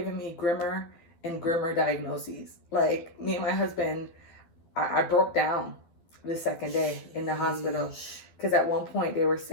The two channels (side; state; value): right; late; 12 ms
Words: me grimmer and grimmer diagnoses. Like, me and my husband, I broke down the second day in the hospital. Because at one point they were